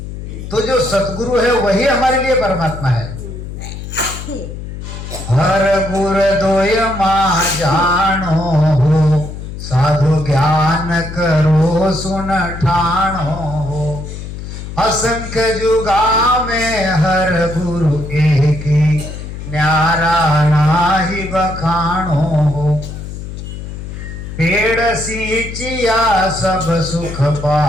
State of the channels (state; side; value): noise; left; hum, 9 dB below the sound